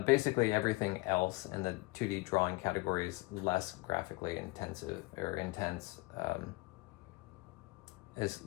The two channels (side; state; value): right; quieter; 23.3 dB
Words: basically everything else in the 2D drawing category is less graphically intensive or intense.